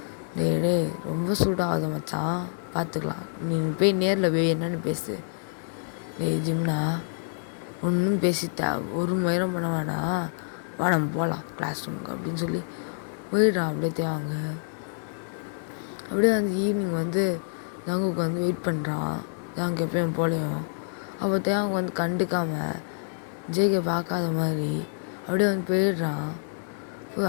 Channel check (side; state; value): right; silent; digital silence